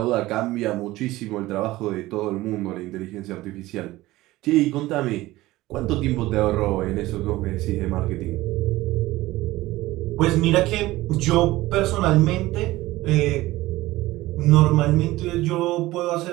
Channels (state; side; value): quieter; left; 17.9 dB